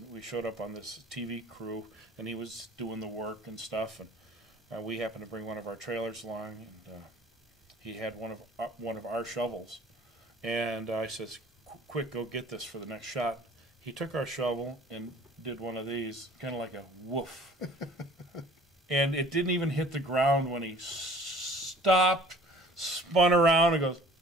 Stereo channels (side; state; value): both; normal; correlation 0.49